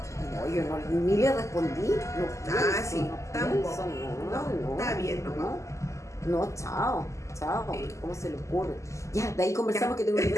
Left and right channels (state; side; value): late; right; 0.15 ms